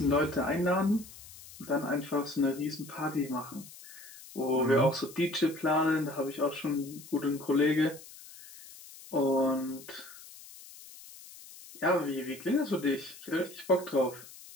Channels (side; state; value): left; noise; hiss, 18 dB below the sound